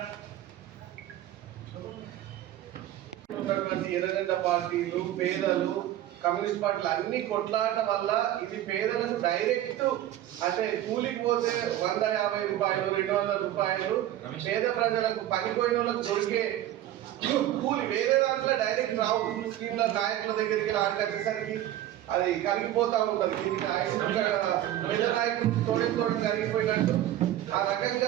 ఎర్రగడ్డ పార్టీలు, పేదలు, కమ్యూనిస్ట్ పార్టీలు అన్ని కొట్లాట వల్ల ఇది పేదలకు డైరెక్ట్ అంటే కూలికి పోతే 150 రూపాయలు, 200 రూపాయలు పేద ప్రజలకు పనిపోయిన వాళ్ళకు దొరికే కూలి వేరే దాంట్లో డైరెక్ట్ రావు. స్కీమ్ల నాయకుల దగ్గరికి ఆడకట్టేసరికి అది కరిగిపోతా ఉంటుంది. దీనికి పేద నాయకులు తోడు కరిగిపోయినట్టు ఆ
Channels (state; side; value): quieter; left; 12.9 dB